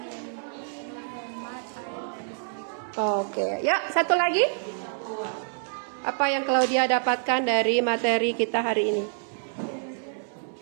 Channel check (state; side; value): silent; left; 60 dB below the other